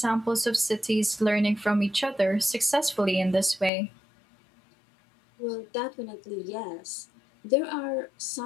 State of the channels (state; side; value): drops out; right; at 3.7 s